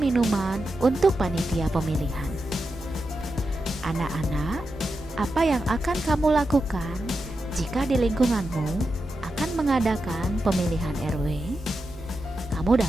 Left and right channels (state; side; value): normal; both; correlation 0.89